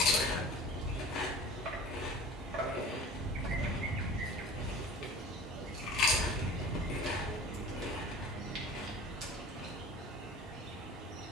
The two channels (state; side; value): normal; both; correlation 0.41